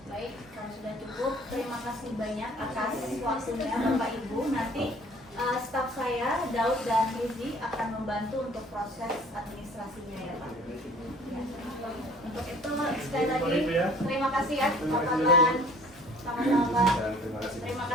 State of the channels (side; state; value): both; normal; correlation 0.52